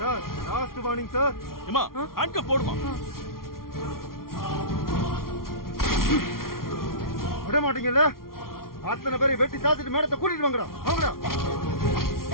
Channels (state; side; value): late; right; 0.93 ms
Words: Sir last warning sir. ஏமா, ஹேண்ட் கப் போடுமா. விட மாட்டீங்கல்ல? அத்தனை பேரை வெட்டி சாத்திட்டு மேடத்தை கூட்டிட்டு வாங்கடா. வாங்கடா.